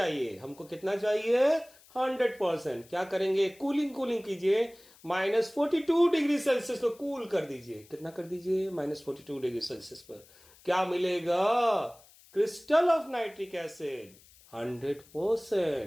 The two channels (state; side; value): noise; left; hiss, 26 dB below the sound